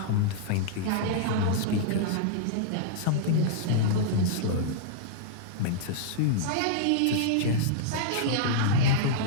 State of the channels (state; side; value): different; both; correlation -0.02